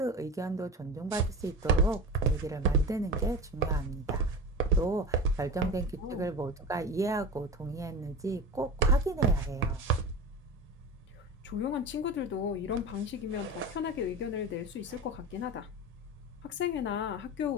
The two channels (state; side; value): normal; both; correlation 0.29